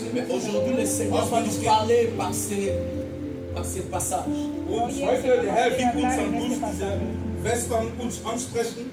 Mais aujourd'hui, le Seigneur va nous parler par ces passages. Und heute, der Herr wird uns dann durch diese Vers dann uns ansprechen.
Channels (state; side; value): identical; both; correlation 1.00